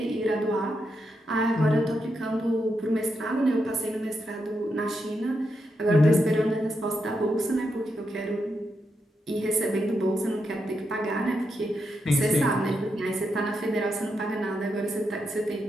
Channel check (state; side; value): normal; both; correlation 0.83